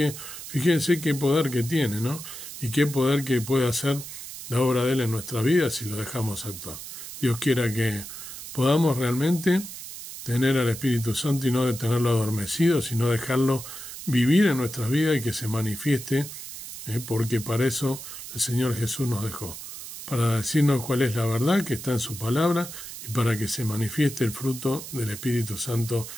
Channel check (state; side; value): noise; right; hiss, 11 dB below the sound